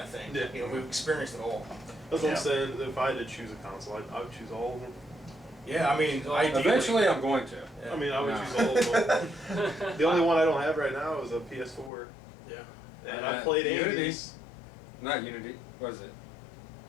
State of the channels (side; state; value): right; drops out; at 11.9 s